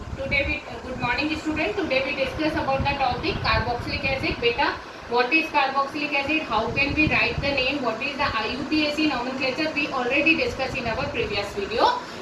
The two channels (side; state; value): both; identical; correlation 1.00